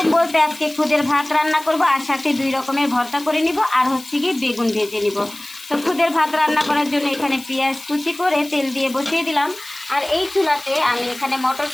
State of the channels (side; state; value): left; noise; hiss, 17 dB below the sound